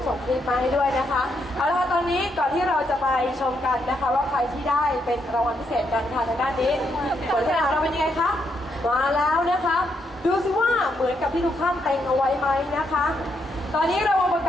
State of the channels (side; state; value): both; normal; correlation 0.78